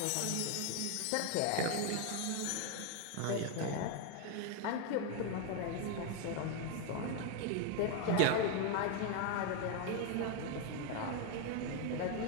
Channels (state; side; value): different; both; correlation 0.01